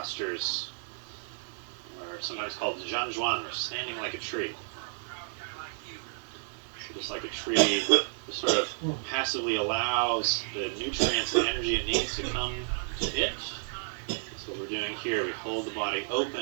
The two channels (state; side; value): silent; left; digital silence